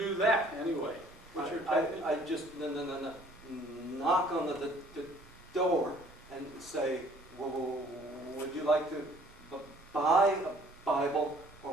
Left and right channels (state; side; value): normal; both; correlation 0.56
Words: that anyway? What's your technique? I just knock on the door and say, well, would you like to buy a Bible,